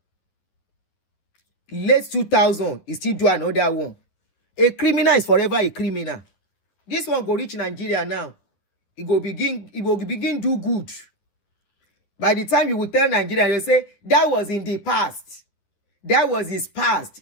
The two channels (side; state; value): right; late; 10 ms